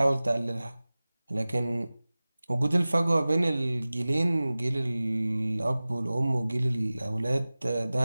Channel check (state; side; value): inverted; both; correlation -0.98